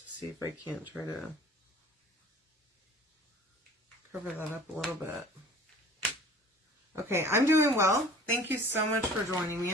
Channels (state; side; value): normal; both; correlation 0.46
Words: see if I can't try to cover that up a little bit. Okay, I'm doing well. Thank you so much for joining me.